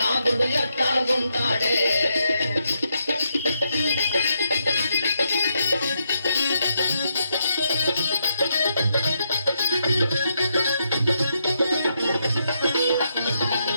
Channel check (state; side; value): inverted; both; correlation -0.80